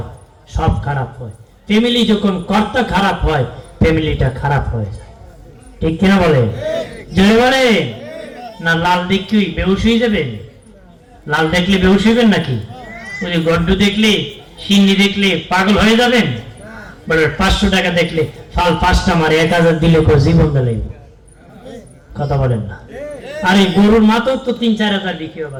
সব খারাপ হয়। ফ্যামিলি যখন কর্তা খারাপ হয় ফ্যামিলিটা খারাপ হয়ে যায়। ঠিক কিনা বলে? জোরে বলে না। লাল দেখি বেহুশ হয়ে যাবেন? লাল দেখলে বেহুশ হইবেন নাকি? ওই যে গড্ডু দেখলে, সিন্নি দেখলে পাগল হয়ে যাবেন? বলে 500 টাকা দেখলে ফাল 5টা মারে 1000 দিলে জীবন দিলেই। কথা বলেন না। আরে গরুর মাথাও তো 3-4 হাজার বিক্রি হয়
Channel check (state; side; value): identical; both; correlation 1.00